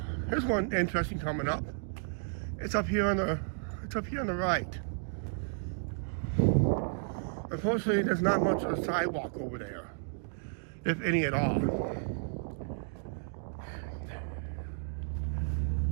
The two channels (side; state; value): left; silent; digital silence